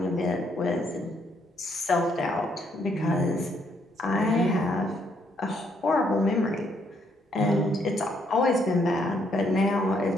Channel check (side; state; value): both; normal; correlation 0.71